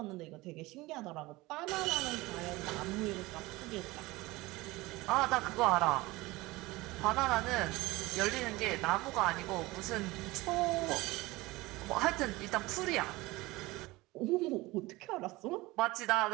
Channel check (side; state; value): left; quieter; 20.8 dB